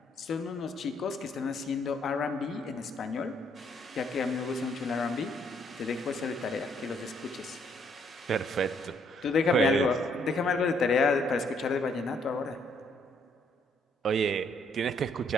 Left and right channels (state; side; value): normal; both; correlation 0.68